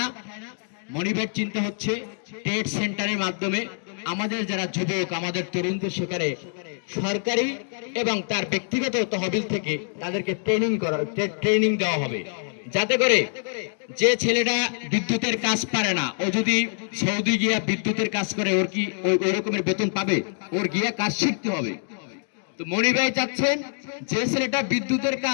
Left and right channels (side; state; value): right; silent; 59 dB below the other